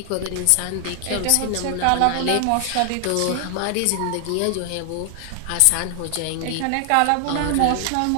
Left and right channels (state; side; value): different; both; correlation 0.00